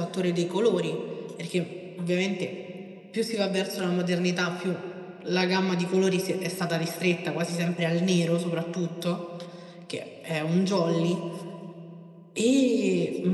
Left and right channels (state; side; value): identical; both; correlation 1.00